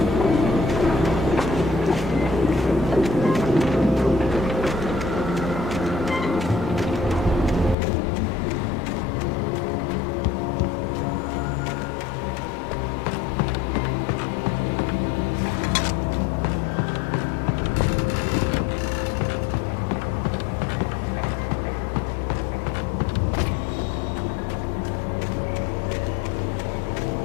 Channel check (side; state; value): right; drops out; at 7.8 s